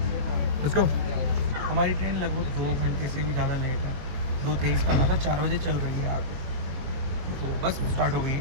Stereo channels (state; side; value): late; left; 22 ms